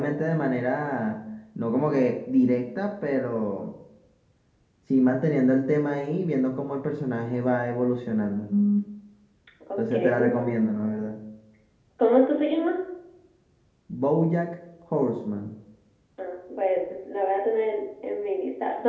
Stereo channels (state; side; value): identical; both; correlation 1.00